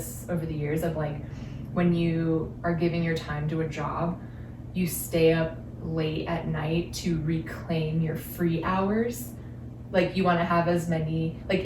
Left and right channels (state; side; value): identical; both; correlation 1.00